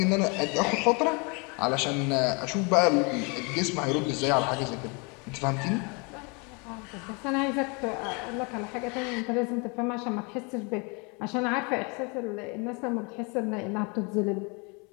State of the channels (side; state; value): right; quieter; 31.6 dB